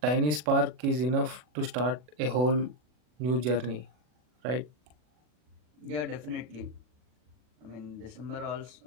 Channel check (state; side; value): late; left; 40 ms